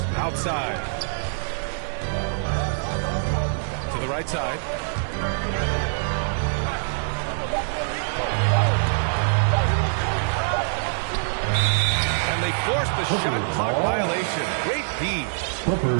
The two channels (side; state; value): left; silent; digital silence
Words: outside. To the right side. And they forced the shot clock violation. Great D.